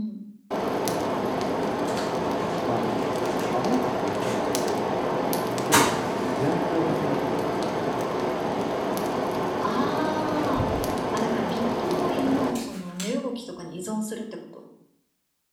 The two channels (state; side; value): identical; both; correlation 1.00